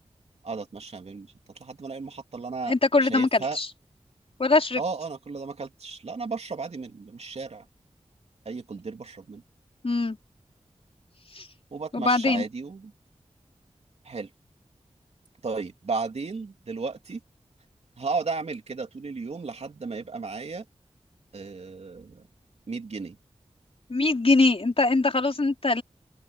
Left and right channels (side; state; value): both; normal; correlation 0.52